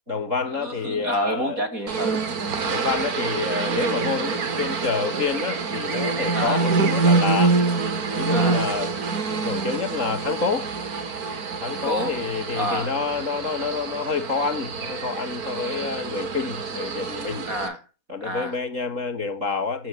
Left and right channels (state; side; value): late; left; 4.5 ms